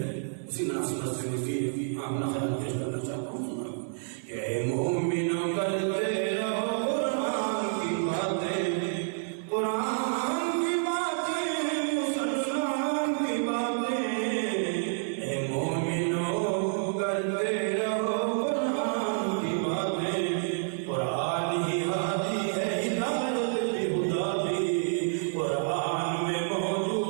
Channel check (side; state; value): left; silent; 59 dB below the other